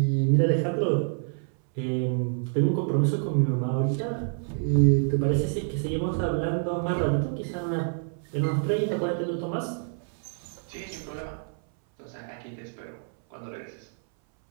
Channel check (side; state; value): left; silent; 59 dB below the other